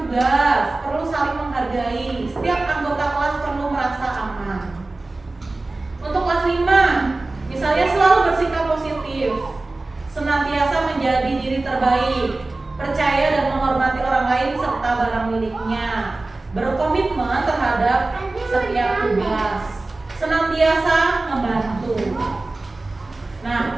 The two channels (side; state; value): left; quieter; 3.1 dB